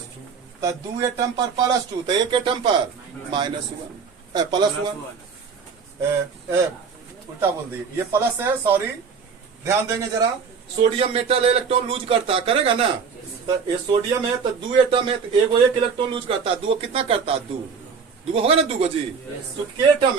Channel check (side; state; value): left; quieter; 5.8 dB